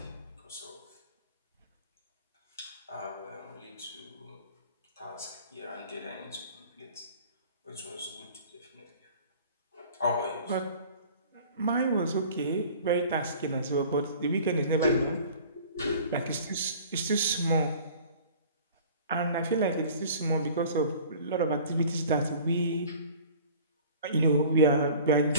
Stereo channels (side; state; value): both; inverted; correlation -0.45